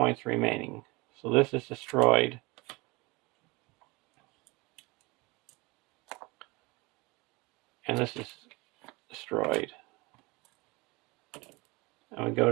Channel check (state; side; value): quieter; left; 24.9 dB